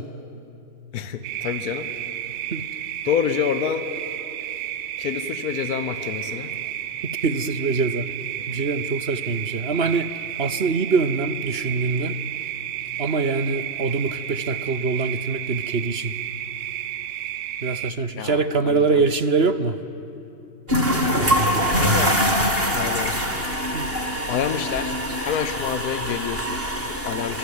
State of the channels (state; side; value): late; left; 2.8 ms